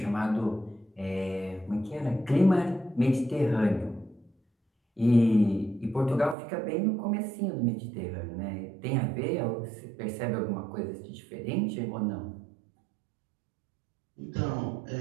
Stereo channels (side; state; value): left; drops out; at 6.4 s